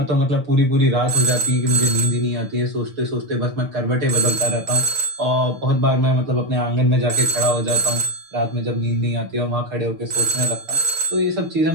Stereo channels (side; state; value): left; late; 6.7 ms